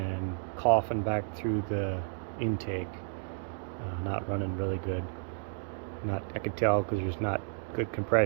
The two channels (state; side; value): silent; left; digital silence